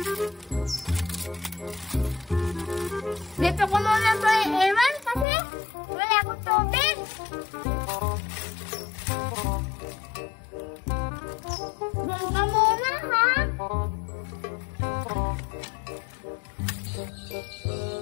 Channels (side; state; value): right; drops out; at 5.2 s